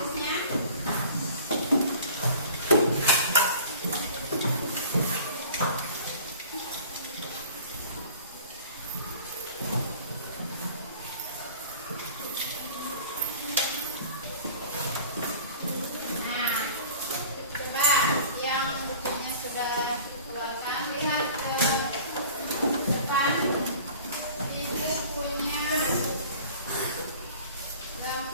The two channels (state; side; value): inverted; both; correlation -0.45